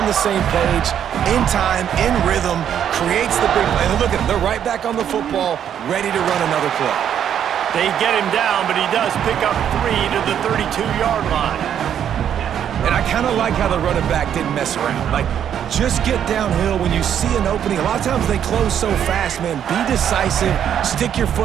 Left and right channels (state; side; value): quieter; left; 9.3 dB